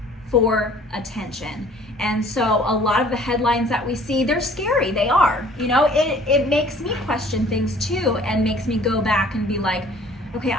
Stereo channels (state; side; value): normal; both; correlation 0.53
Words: for attention. And so a lot of the headlines that we see, they're scary. They are. It makes me question things too, and makes me go back and be like, okay,